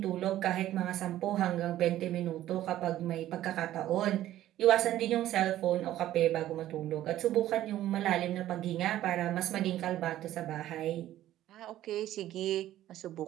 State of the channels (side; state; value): left; quieter; 13.5 dB